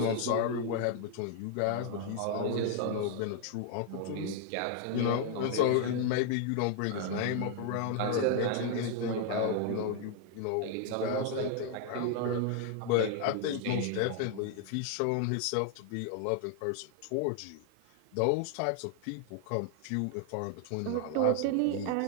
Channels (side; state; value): both; different; correlation 0.00